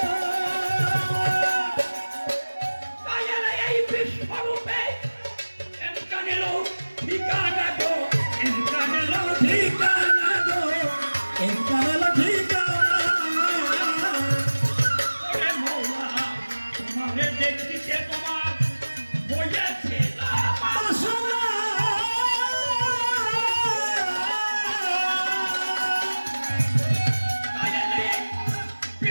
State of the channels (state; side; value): inverted; both; correlation -1.00